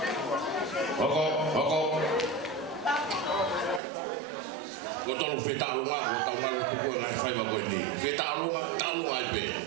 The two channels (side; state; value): left; drops out; at 3.8 s